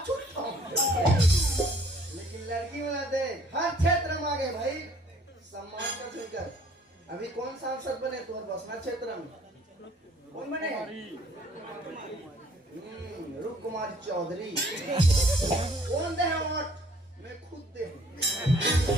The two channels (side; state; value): both; normal; correlation 0.58